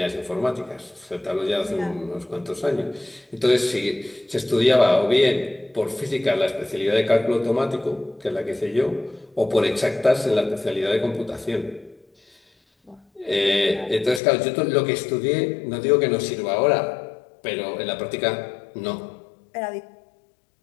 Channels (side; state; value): right; drops out; at 14.2 s